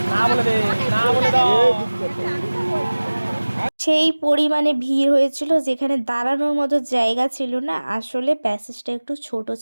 সেই পরিমাণে ভিড় হয়েছিল, যেখানে দাঁড়ানোর মতো জায়গা ছিল না। আসলে প্যাসেজটা একটু ছোট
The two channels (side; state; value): both; inverted; correlation -1.00